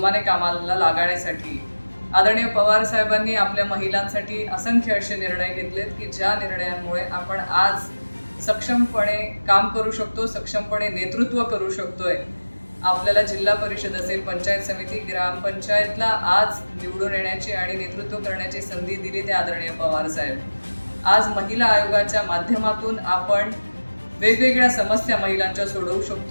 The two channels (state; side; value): inverted; both; correlation -1.00